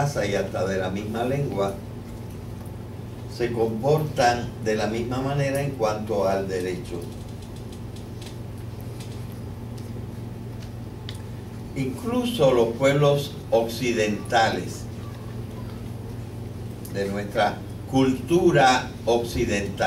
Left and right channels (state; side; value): identical; both; correlation 1.00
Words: y hasta de la misma lengua, se comportan de la misma manera en cuanto al derecho. Incluso los pueblos occidentales, de nuestra cultura